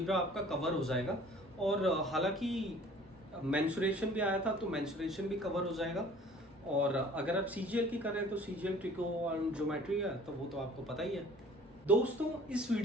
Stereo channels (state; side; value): normal; both; correlation 0.50